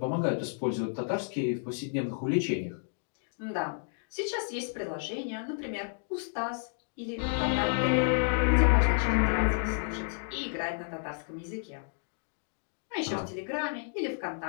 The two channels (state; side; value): silent; right; digital silence